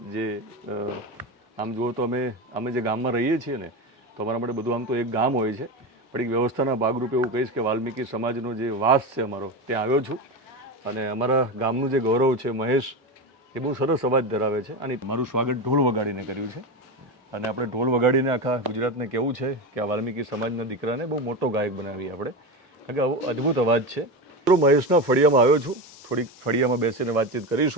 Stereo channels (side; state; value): both; normal; correlation 0.20